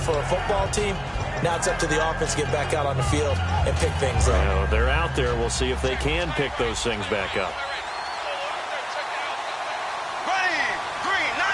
a football team. Now it's up to the offense to get back out on the field and pick things up. Well, they're out there. We'll see if they can pick those things back up.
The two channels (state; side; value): identical; both; correlation 1.00